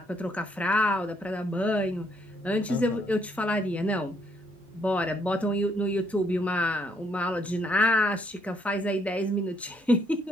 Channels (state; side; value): normal; both; correlation 0.70